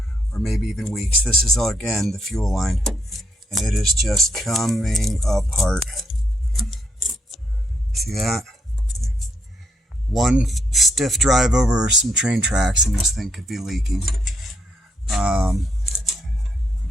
or maybe even weeks. This is, again, the fuel line, and it is just coming apart. See that? One stiff drive over some train tracks and this thing could be leaking. Again,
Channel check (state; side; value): normal; both; correlation 0.75